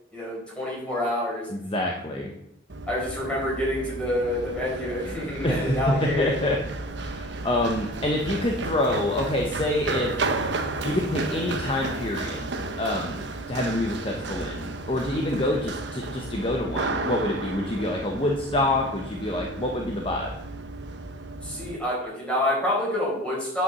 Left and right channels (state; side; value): normal; both; correlation 0.40